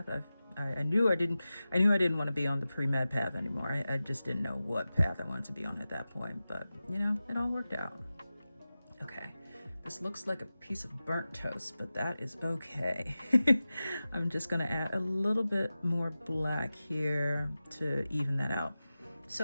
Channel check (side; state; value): both; inverted; correlation -0.95